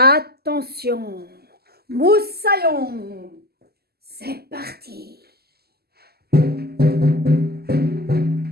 moussaillon, c'est parti.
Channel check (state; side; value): late; left; 0.46 ms